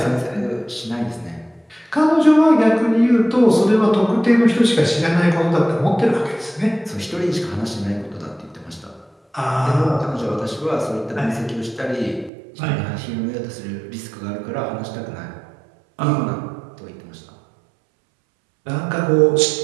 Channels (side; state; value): left; drops out; at 12.3 s